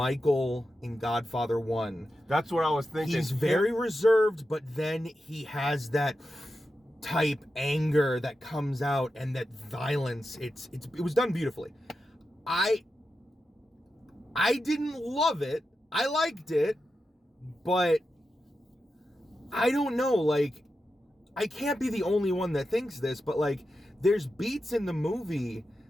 in Godfather 1. That's what I was thinking. He's very reserved, but then he has that type anger that comes out and that violence. It was done beautifully. I didn't love it. I liked it, but I don't know, like, I can't be the only one that thinks this, but like, there's beats in the movie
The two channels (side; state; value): both; normal; correlation 0.90